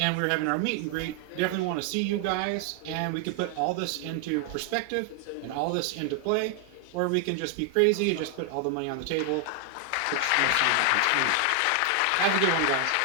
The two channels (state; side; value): different; both; correlation 0.00